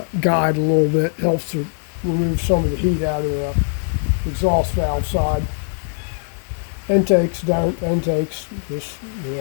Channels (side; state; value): right; silent; digital silence